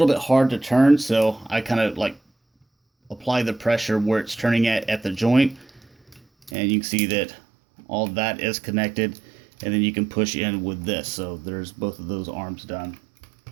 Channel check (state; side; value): drops out; left; at 6.5 s